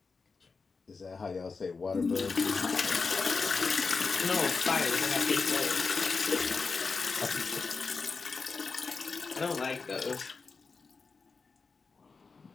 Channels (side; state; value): right; quieter; 4.6 dB